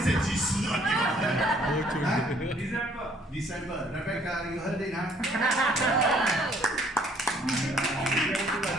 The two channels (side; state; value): both; normal; correlation 0.61